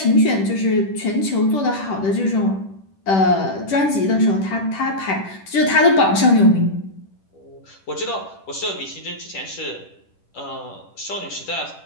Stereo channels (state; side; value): late; right; 10 ms